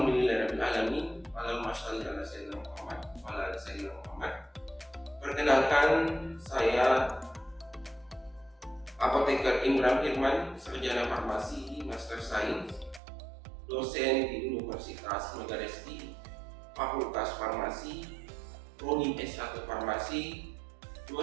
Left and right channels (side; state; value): left; drops out; at 13.0 s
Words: Allahumma shalli ala sayyidina Muhammad wa ala ali sayyidina Muhammad. Perkenalkan, saya Apoteker Imran Firman, sarjana farmasi, master sains, dosen di Universitas Megaresty, Fakultas Farmasi, Prodi S1 Farmasi,